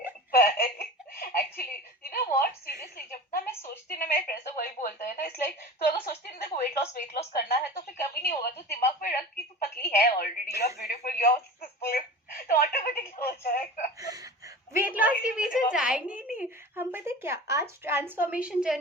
actually you know what, seriously जब ना मैं सोचती ना, मेरे फ्रेंड्स तो वही बोलते हैं ना, इट्स लाइक तो अगर सोचती ना देखो वेट लॉस करना है तो फिर कभी नहीं होगा, तो दिमाग में रख कि तू पतली है already, you are beautiful, you are successful, तो ऑटोमेटिकली हो जाएगा। वेट लॉस के पीछे जाएंगे ही नहीं हम। पता है क्या, आज ट्रांसफॉर्मेशन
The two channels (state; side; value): normal; both; correlation 0.35